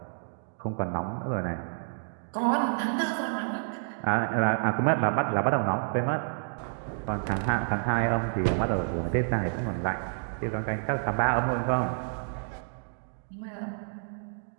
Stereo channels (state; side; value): silent; left; digital silence